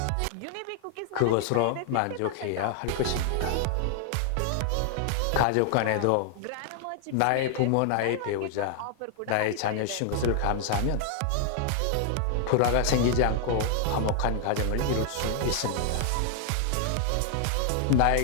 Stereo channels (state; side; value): different; both; correlation 0.00